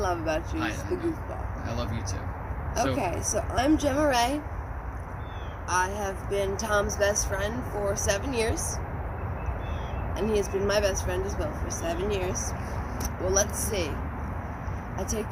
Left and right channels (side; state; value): both; identical; correlation 1.00